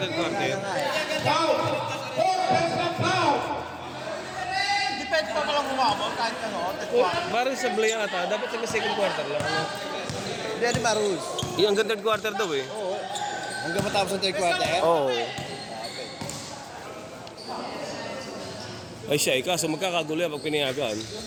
quarter. Depende pa palang umabot kahit ano. Parang sa Blay ata, dapat sa second quarter lang. Ano? Hindi, di ba rules? Yung hanggang third quarter daw eh. Oo. Hanggang matapos ang third quarter? Oo. Ay siya, kaso magkakagulo yan pag pinayagan.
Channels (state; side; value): identical; both; correlation 1.00